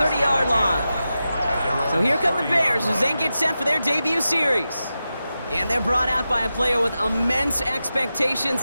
line. So here come the Bears as they get set for their debut series. And they're brought out by a player with immense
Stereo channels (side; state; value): both; inverted; correlation -0.91